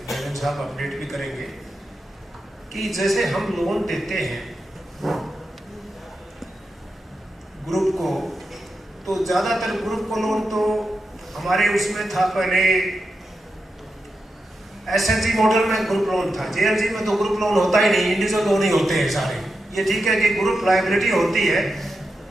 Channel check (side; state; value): both; normal; correlation 0.88